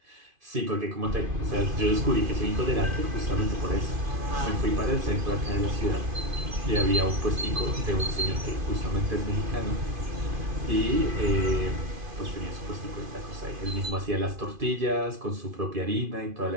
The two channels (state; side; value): late; left; 2.5 ms